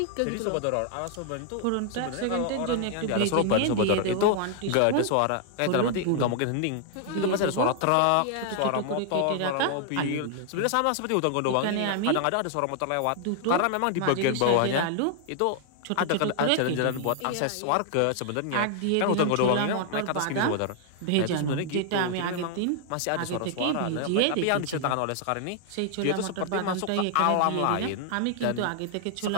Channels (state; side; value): different; both; correlation 0.00